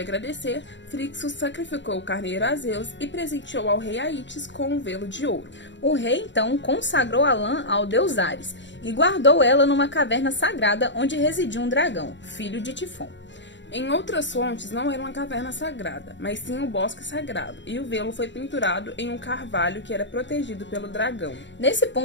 Frixus sacrificou o carneiro a Zeus e presenteou ao rei Aítes com um velo de ouro. O rei, então, consagrou a lã ao deus Ares e guardou ela numa caverna sagrada onde residia um dragão, filho de Tifon. Em outras fontes, não era uma caverna sagrada, mas sim um bosque sagrado, e o velo foi pinturado em um carvalho que era protegido pelo dragão. Nesse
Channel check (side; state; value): right; late; 0.53 ms